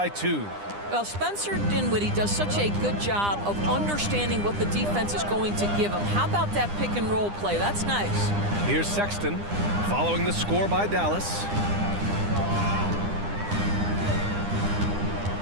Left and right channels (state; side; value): late; left; 9.9 ms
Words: 2. Well, Spencer Dinwiddie does such a good job of understanding what the defense is going to give him. How about that pick and roll play? That's nice. Here's Sexton following the score by Dallas.